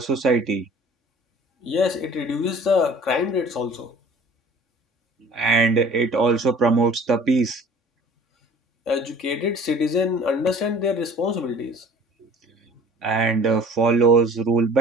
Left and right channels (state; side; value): normal; both; correlation 0.48